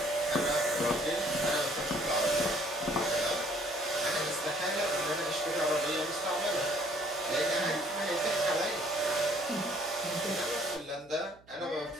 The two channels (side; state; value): right; noise; hum, 28 dB below the sound